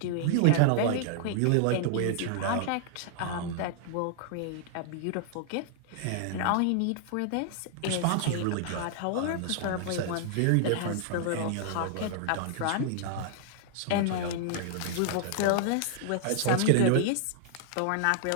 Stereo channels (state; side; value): different; both; correlation 0.00